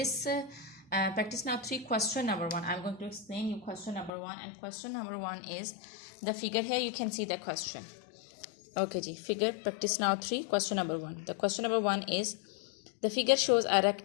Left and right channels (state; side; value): drops out; right; at 4.1 s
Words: practice now 3 question number 1, I'm going to explain you question number 1, and question number 1 is the figure. Here you can see the question. Okay ji, figure practice now 3 question number 1. The question number 1 is the figure shows a